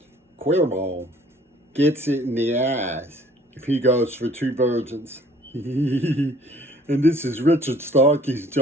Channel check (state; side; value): normal; both; correlation 0.55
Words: Queerball gets it in the ass if he goes for two virgins. And this is Richard Starkey's